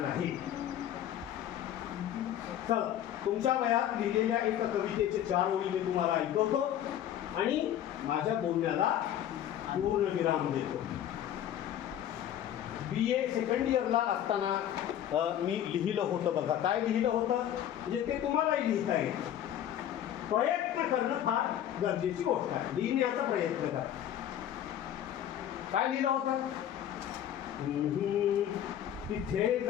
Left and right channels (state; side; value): quieter; right; 10.9 dB